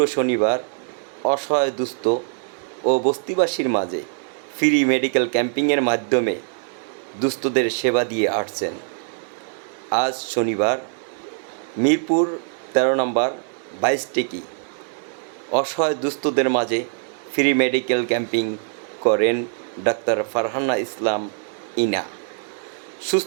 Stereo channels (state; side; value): silent; left; digital silence